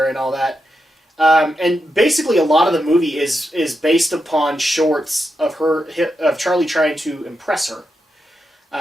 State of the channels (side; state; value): both; normal; correlation 0.86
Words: and all that. And basically a lot of the movie is based upon shorts of Charlie trying to impress her.